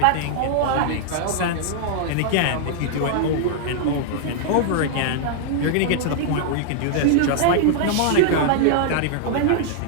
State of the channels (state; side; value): different; both; correlation -0.01